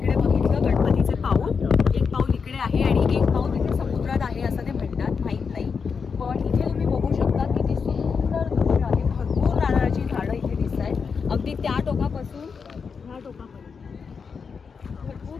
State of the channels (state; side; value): quieter; right; 5.7 dB